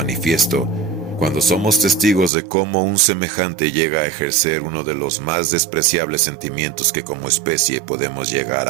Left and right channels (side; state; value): left; drops out; at 2.3 s